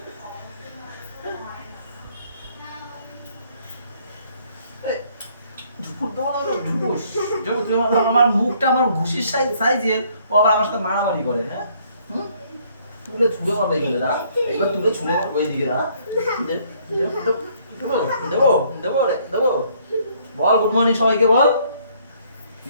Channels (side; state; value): both; inverted; correlation -0.64